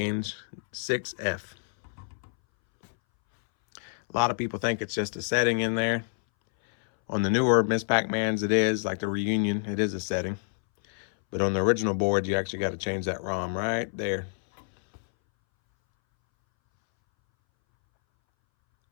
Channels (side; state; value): right; silent; 60 dB below the other